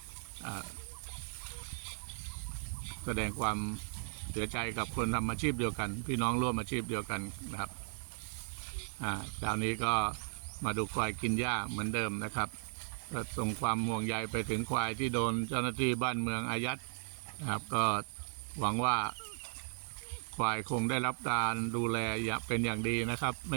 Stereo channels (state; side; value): silent; left; digital silence